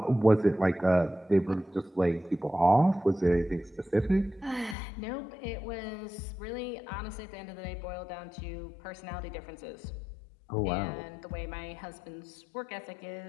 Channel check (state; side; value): drops out; right; at 4.8 s